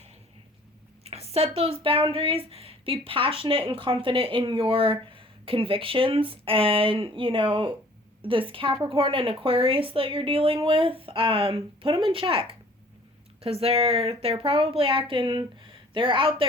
those boundaries. Be passionate and confident in your convictions. And, you know, this Capricorn and Aquarius that you're dealing with, put them in check. Because they're probably they're out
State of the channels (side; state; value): both; normal; correlation 0.53